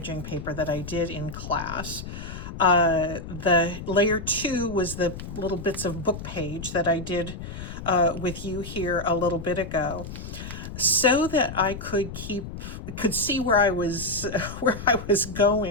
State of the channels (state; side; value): noise; left; rumble, 10 dB below the sound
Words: paper that I did in class. The layer 2 was the little bits of book page that I did with you here a little bit ago, so that I could see where I was